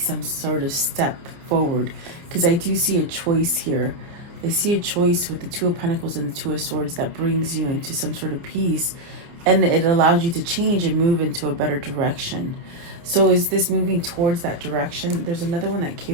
sort of step forward. Because I do see a choice here. I see a choice with the Two of Pentacles and the Two of Swords that brings you into some sort of peace, and it allows you to change and move into a better direction. So is this moving towards that direction? There's another one that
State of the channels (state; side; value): late; left; 29 ms